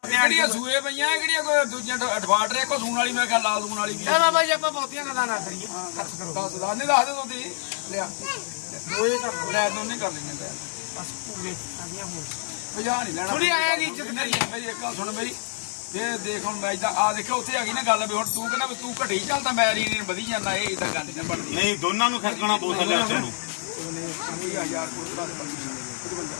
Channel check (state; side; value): silent; right; digital silence